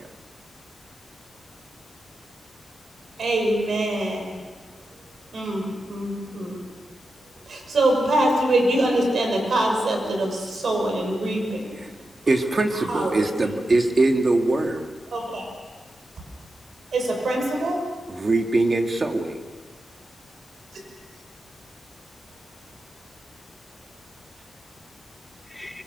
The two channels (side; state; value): both; normal; correlation 0.89